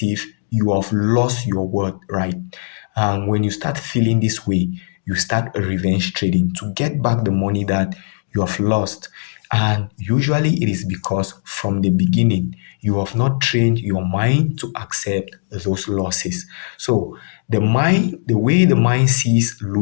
if you have lost your worth, right? And when you start feeling this way, you start a revenge trading to get back the money that you have lost. And usually it is because from the beginning, you have not trained your mind to accept those losses. So the way the mind sees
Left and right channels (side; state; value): right; silent; digital silence